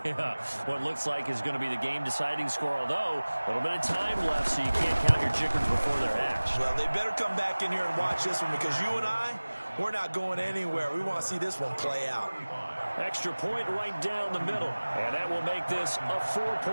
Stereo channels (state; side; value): inverted; both; correlation -1.00